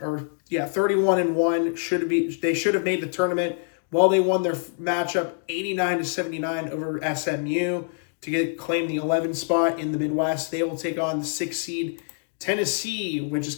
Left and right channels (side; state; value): right; silent; 62 dB below the other